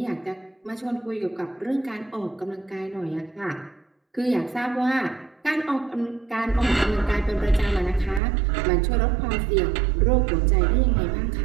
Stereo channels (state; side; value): drops out; left; at 8.2 s